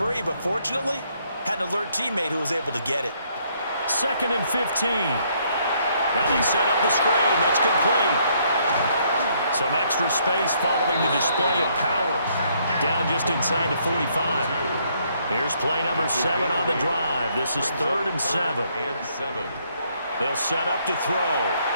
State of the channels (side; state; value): both; inverted; correlation -0.69